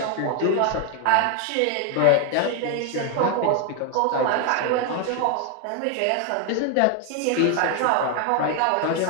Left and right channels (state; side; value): different; both; correlation 0.01